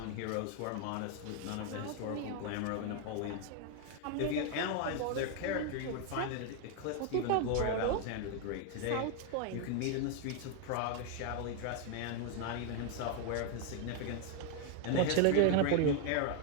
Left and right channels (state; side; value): different; both; correlation 0.00